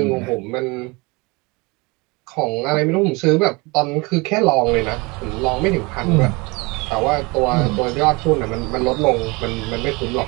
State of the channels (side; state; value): left; quieter; 26.2 dB